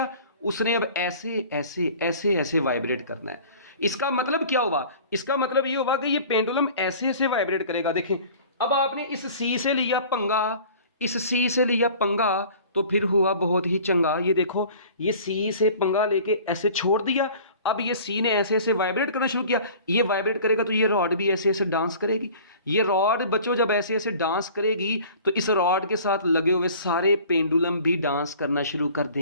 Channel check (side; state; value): both; inverted; correlation -0.46